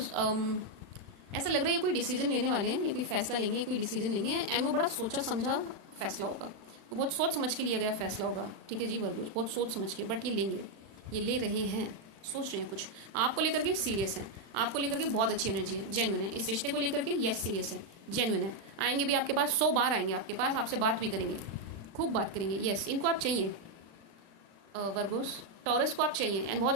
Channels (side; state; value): left; late; 36 ms